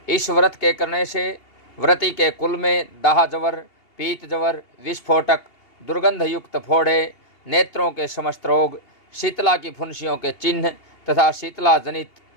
इस व्रत के करने से व्रती के कुल में दाह जवर, पीत जवर, विस्फोटक, दुर्गंध युक्त फोड़े, नेत्रों के समस्त रोग, शीतला की फुंसियों के चिन्ह तथा शीतला जनित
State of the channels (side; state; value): right; late; 2.8 ms